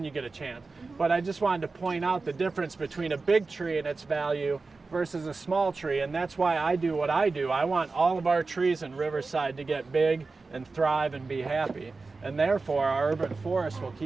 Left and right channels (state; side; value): quieter; left; 3.9 dB